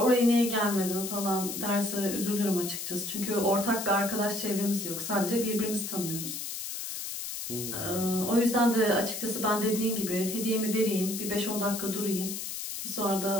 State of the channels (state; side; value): noise; left; hiss, 6 dB below the sound